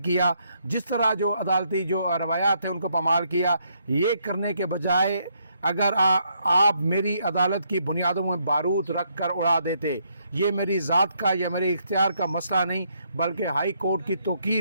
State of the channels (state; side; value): inverted; both; correlation -0.73